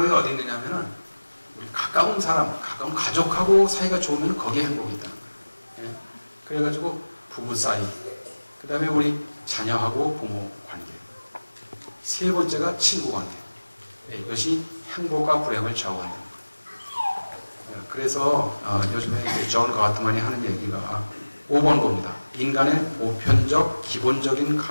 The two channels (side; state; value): both; inverted; correlation -1.00